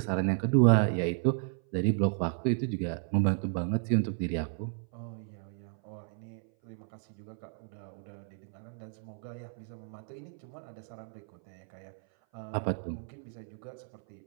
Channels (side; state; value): left; silent; 56 dB below the other